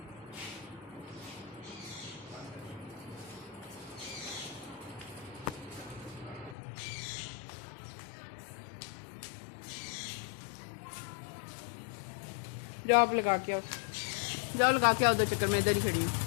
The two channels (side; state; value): right; drops out; at 6.6 s